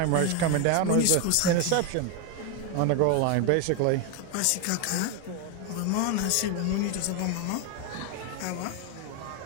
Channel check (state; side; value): different; both; correlation 0.01